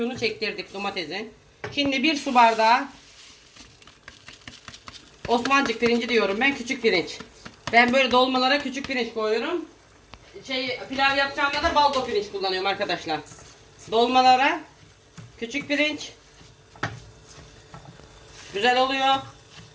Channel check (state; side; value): identical; both; correlation 1.00